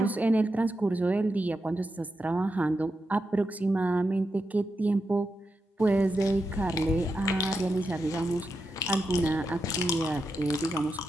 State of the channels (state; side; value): normal; both; correlation 0.87